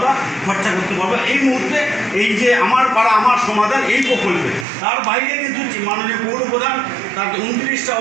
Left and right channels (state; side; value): drops out; left; at 4.7 s